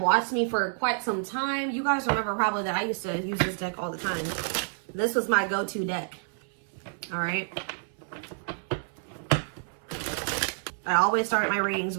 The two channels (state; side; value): silent; left; 59 dB below the other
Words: me for quite some time, you guys remember probably that I used to use this deck all the time. This was my go-to deck. All right. I always start my readings